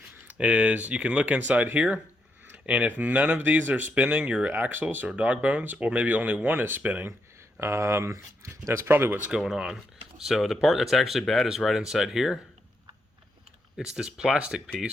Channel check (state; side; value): normal; both; correlation 0.80